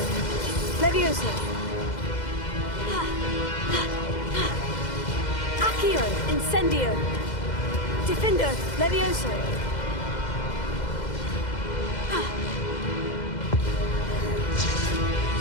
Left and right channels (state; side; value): late; right; 2.0 ms